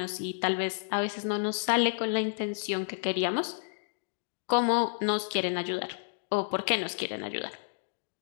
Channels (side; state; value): right; silent; digital silence